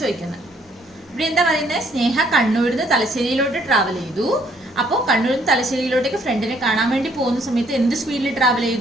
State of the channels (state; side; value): normal; both; correlation 0.66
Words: ചോദിക്കുന്നത്. ഇവിടെ എന്താ പറയുന്നത്? സ്നേഹ കണ്ണൂരിൽ നിന്ന് തലശ്ശേരിയിലോട്ട് ട്രാവൽ ചെയ്തു. അപ്പോൾ കണ്ണൂരിൽ നിന്ന് തലശ്ശേരിയിലോട്ടേക്ക് ഫ്രണ്ടിനെ കാണാൻ വേണ്ടി പോകുന്ന സമയത്ത് എന്ത് സ്പീഡിൽ ട്രാവൽ